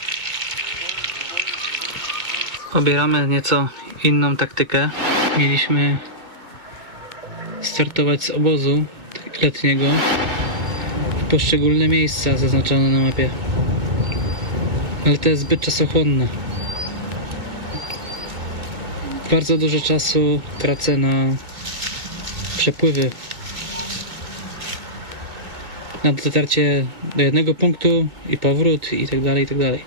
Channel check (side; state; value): left; late; 2.2 ms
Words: Obieramy nieco inną taktykę. Mieliśmy startować z obozu letniego w poszczególne miejsca zaznaczone na mapie, ale to jest zbyt czasochłonne. Bardzo dużo czasu tracę na przepływy, na dotarcie do jednego punktu i powrót i tak dalej, i tak dalej.